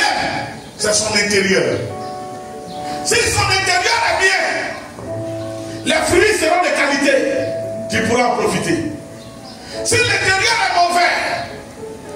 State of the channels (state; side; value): identical; both; correlation 1.00